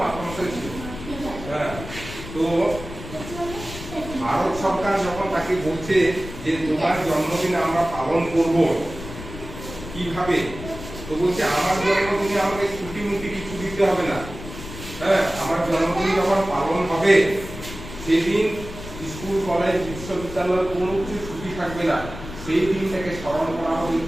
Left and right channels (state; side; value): noise; left; rumble, 12 dB below the sound